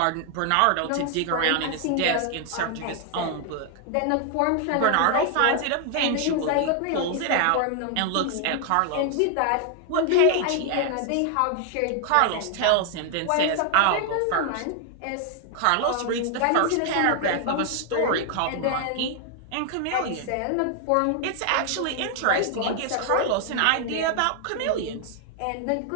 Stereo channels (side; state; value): both; different; correlation 0.00